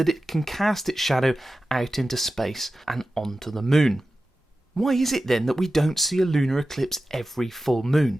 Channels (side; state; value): both; normal; correlation 0.94